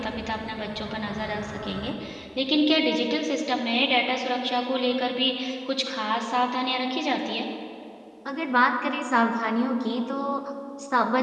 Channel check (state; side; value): identical; both; correlation 1.00